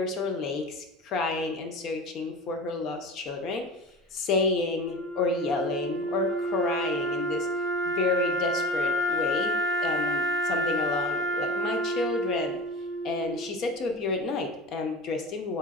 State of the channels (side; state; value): both; normal; correlation 0.32